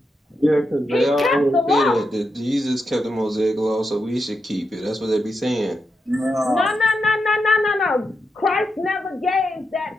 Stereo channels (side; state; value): both; normal; correlation 0.86